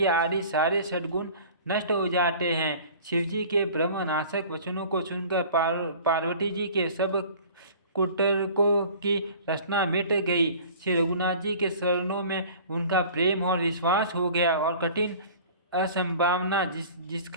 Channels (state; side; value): inverted; both; correlation -0.45